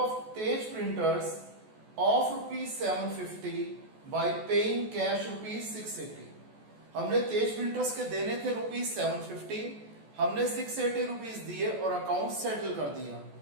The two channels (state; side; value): late; left; 14 ms